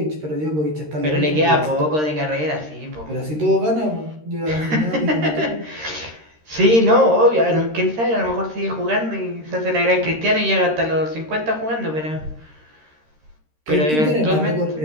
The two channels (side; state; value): left; late; 13 ms